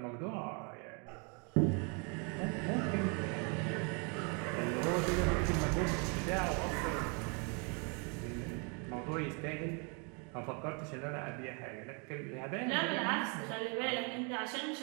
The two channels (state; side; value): quieter; left; 35.3 dB